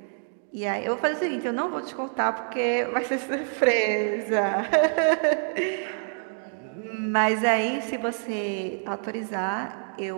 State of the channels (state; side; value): silent; left; 61 dB below the other